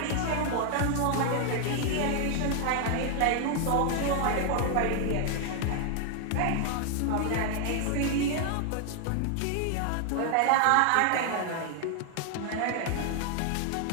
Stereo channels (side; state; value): both; different; correlation 0.00